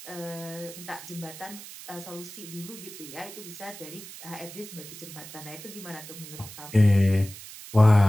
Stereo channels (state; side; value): noise; right; hiss, 14 dB below the sound